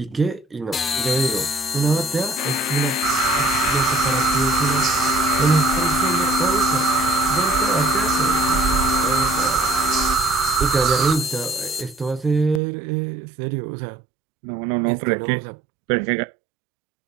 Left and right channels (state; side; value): drops out; left; at 12.6 s